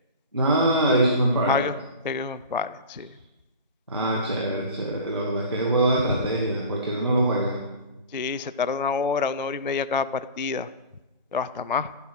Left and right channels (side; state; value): both; inverted; correlation -0.35